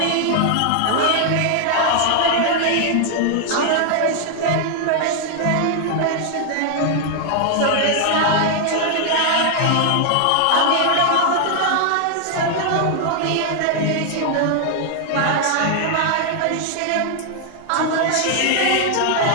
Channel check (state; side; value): different; both; correlation 0.00